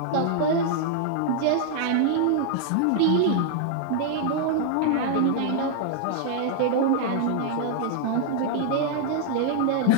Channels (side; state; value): both; different; correlation -0.01